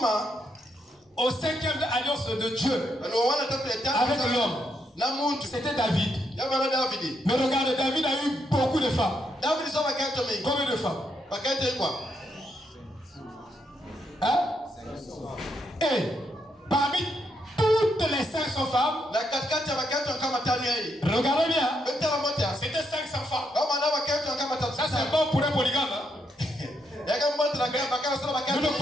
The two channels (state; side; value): normal; both; correlation 0.78